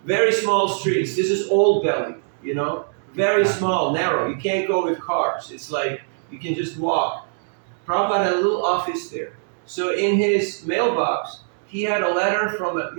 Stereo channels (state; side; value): silent; left; digital silence